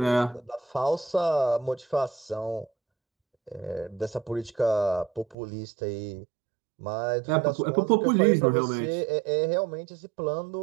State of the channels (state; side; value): drops out; left; at 5.4 s